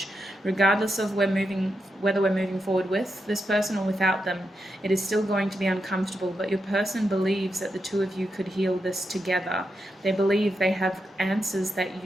Regardless of whether we're moving forward with this person or without them, it is still going to be uncomfortable, but your person believes that the two of you could heal this together. They believe they have answers that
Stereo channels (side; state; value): both; normal; correlation 0.85